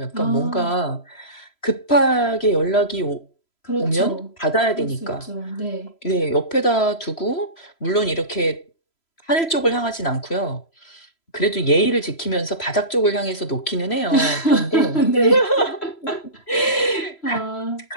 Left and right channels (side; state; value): right; late; 3.0 ms